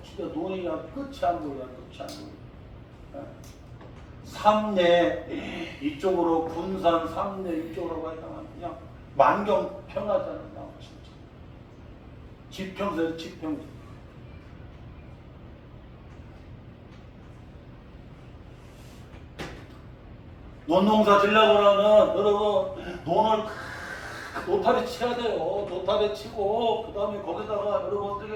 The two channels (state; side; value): identical; both; correlation 1.00